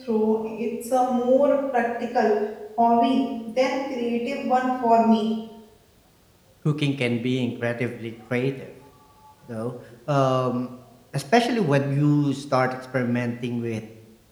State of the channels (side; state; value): both; identical; correlation 1.00